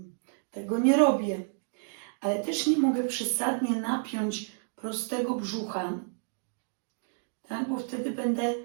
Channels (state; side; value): silent; left; digital silence